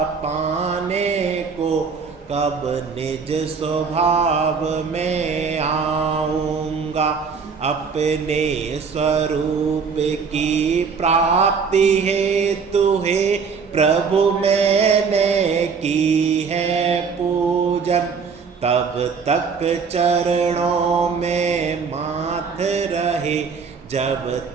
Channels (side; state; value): left; quieter; 5.6 dB